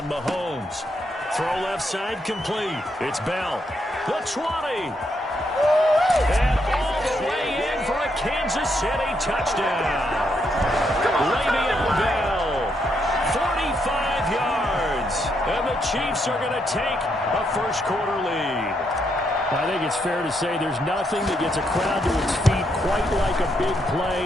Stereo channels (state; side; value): normal; both; correlation 0.77